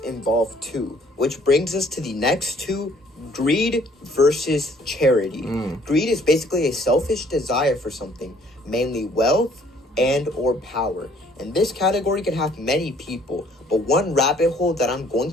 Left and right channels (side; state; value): both; normal; correlation 0.60